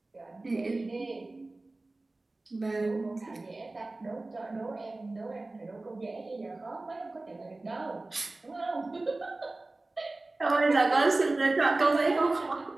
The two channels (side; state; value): left; quieter; 3.0 dB